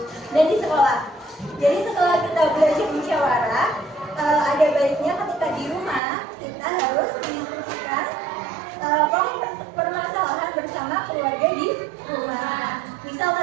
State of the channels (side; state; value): left; drops out; at 6.0 s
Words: dan di sekolah? Jadi setelah kita belajar musyawarah, ada baiknya ketika di rumah kita harus menginstruksikan permasalahan bersama keluarga di rumah. Misal